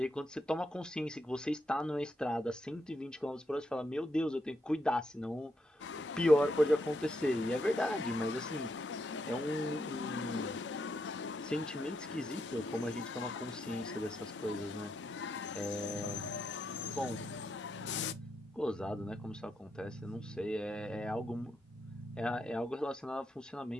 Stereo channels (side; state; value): both; normal; correlation 0.81